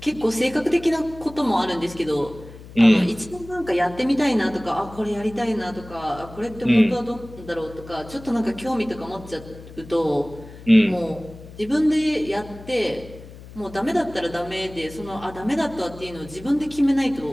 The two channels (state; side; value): noise; left; hum, 17 dB below the sound